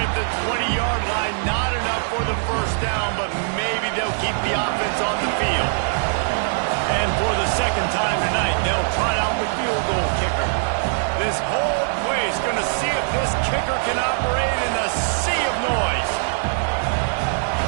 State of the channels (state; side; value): silent; left; digital silence